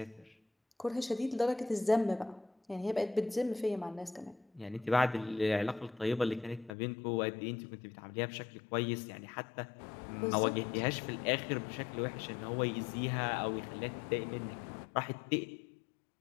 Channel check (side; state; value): right; drops out; at 6.7 s